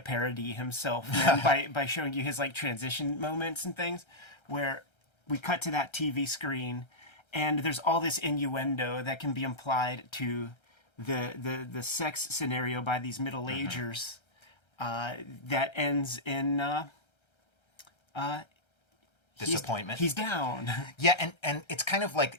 parody himself, man, by showing you his like transition moments and things where we cut to that TV screen and there's all this innuendo that can be implied to the sex scenario by these middle-agers that ends in Disappointment. He's down. Yeah, and it's kind of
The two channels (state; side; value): late; right; 1.3 ms